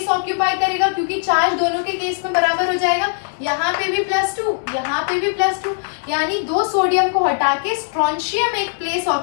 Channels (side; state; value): right; silent; digital silence